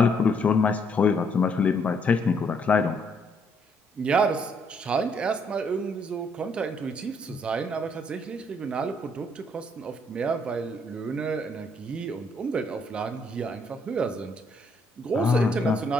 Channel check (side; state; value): both; normal; correlation 0.70